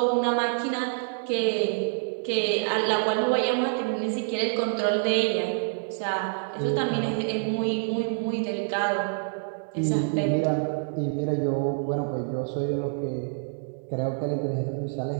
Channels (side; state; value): left; silent; digital silence